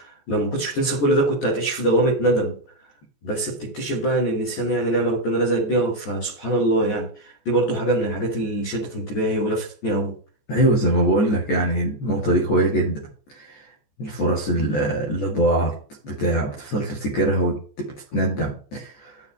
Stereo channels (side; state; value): right; late; 14 ms